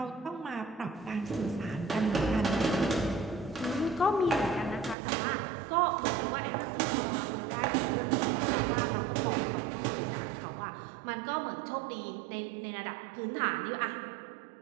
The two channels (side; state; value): left; drops out; at 5.0 s